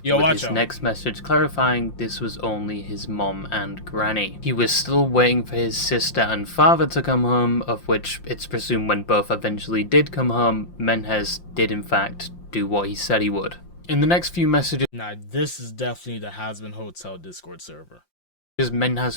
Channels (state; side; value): late; right; 5.7 ms